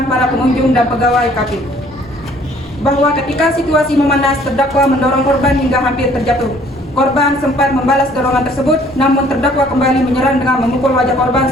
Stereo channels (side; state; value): both; normal; correlation 0.58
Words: para pengunjung dan pegawai kafe. Bahwa ketika situasi memanas, terdakwa mendorong korban hingga hampir terjatuh. Korban sempat membalas dorongan tersebut, namun terdakwa kembali menyerang dengan memukul wajah korban